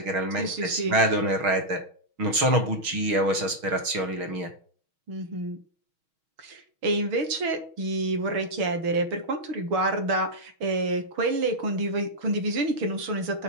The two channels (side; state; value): left; late; 6.3 ms